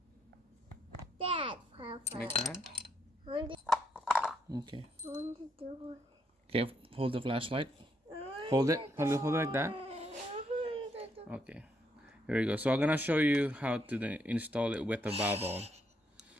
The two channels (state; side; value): normal; both; correlation 0.75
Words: That, Papa. Like that? I want Okay. to do it. Okay, hold the flashlight. Hold it. Hold it like that. Okay. Here we go. So I'm gonna show you how to install it with the valve on.